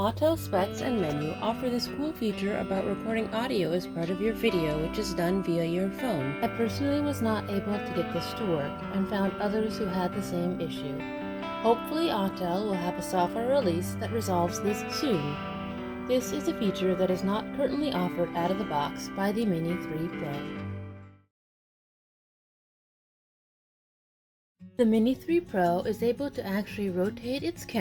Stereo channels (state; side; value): identical; both; correlation 1.00